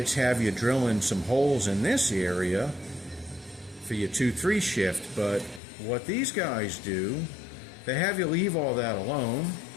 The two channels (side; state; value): right; drops out; at 5.6 s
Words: have you drilling some holes in this area for your 2-3 shift, but what these guys do, they have you leave all that alone,